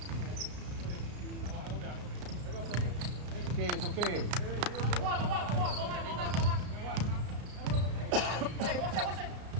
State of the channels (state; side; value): late; left; 33 ms